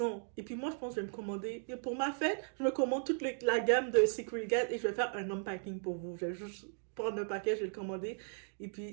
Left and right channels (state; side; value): silent; left; digital silence